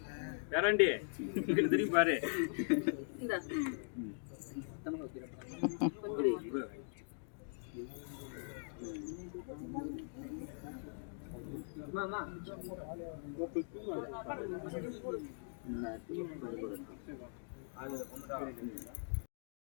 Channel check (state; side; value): silent; right; digital silence